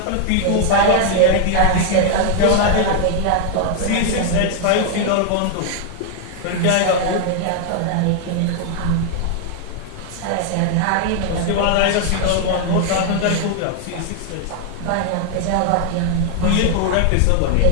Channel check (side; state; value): both; different; correlation 0.00